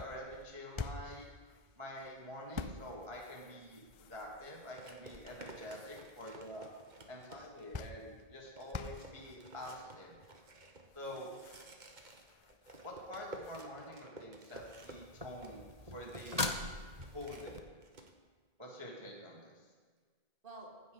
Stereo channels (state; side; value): late; left; 1.8 ms